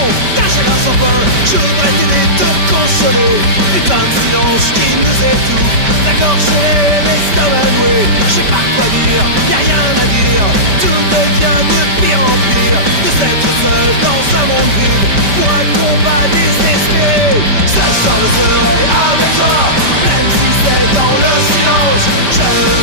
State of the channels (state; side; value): late; left; 5.1 ms